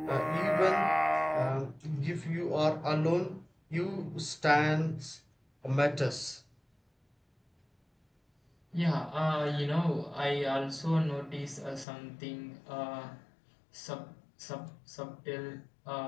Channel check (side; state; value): right; drops out; at 11.9 s